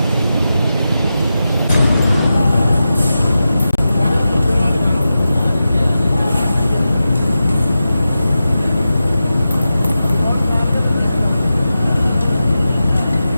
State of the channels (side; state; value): both; inverted; correlation -0.92